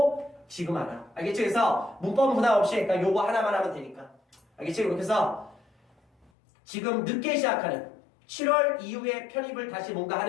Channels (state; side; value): drops out; right; at 6.3 s